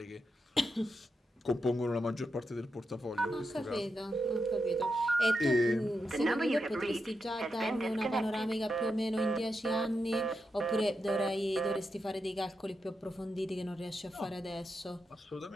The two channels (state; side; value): normal; both; correlation 0.86